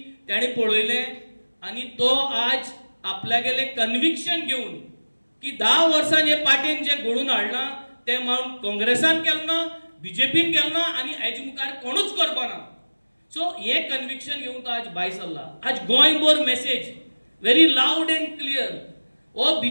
ताणें पळयलें आनी तो आज आपल्यागेलें कन्विक्शन घेवन की 10 वर्सां हे पार्टीन जे घडोवन हाडलां तें मागून काँग्रेसान केलें ना, बीजेपीन केलें ना आनी हेजे मुखार कोणूच करपाना. सो हे कन्विक्शन घेवन तो आज भायर सरला. आज गोंयभर message very loud end clear. हो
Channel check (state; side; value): inverted; both; correlation -1.00